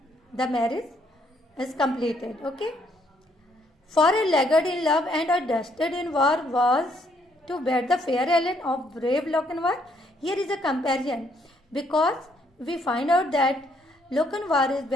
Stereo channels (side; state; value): both; normal; correlation 0.69